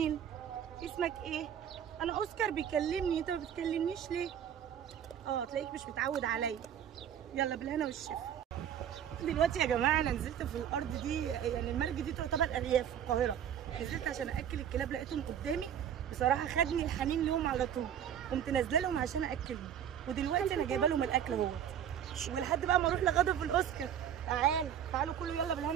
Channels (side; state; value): left; quieter; 9.3 dB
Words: اسمك ايه؟ انا اوسكار بيكلمني، انت ما بتكلمنيش ليه؟ تلاقيك مش متعود عليا. يلا بالهنا والشفا. دلوقتي يا جماعه انا نزلت في الارض دي، يعني المرج دي تعتبر ارياف في القاهره. نزلت عشان اكل الكلاب، لقيتهم قدامي بصراحه، خدني الحنين ليهم على طول، قمت نازله لهم عشان اكلهم. ودلوقتي انا جايبه لهم الاكل اهو، ولحد بقى ما اروح لغدا في الاوسكار. تعالوا كله يلا